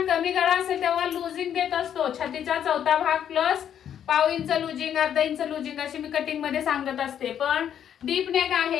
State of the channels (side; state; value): right; quieter; 9.4 dB